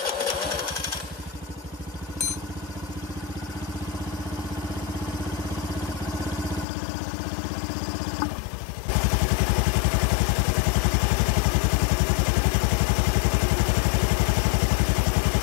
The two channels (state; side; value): drops out; right; at 6.7 s